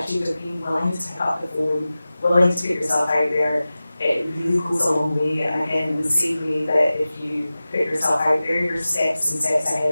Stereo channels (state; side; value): inverted; both; correlation -0.96